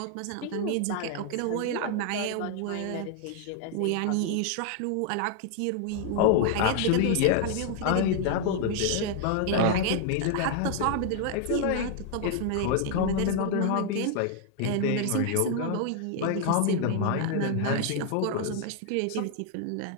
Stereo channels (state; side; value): different; both; correlation 0.00